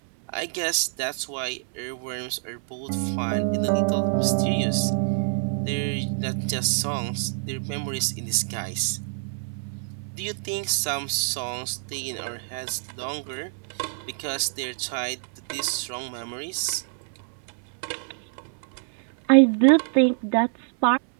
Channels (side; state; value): left; silent; 60 dB below the other